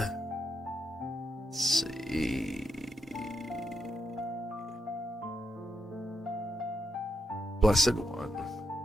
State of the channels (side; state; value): both; normal; correlation 0.81